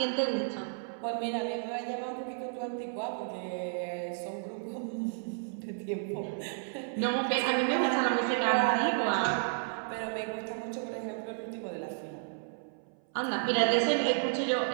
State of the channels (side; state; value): left; silent; 56 dB below the other